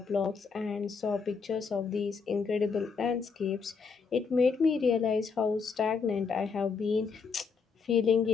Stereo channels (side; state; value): right; quieter; 5.3 dB